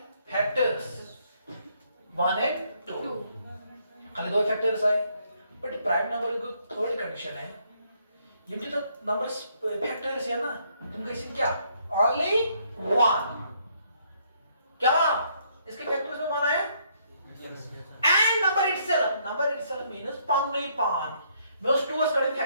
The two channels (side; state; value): both; inverted; correlation -0.70